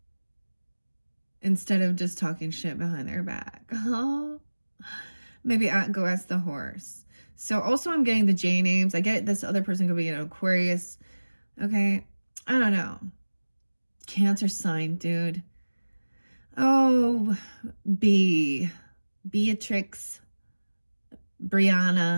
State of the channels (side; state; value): both; inverted; correlation -1.00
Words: Instead of just talking shit behind their back. Oh, maybe go ask the horse. So also I'm getting the J names. I get this other person could be an Aquarius. Okay. I don't know. Cancer sign, dude. Oh, Beatrix,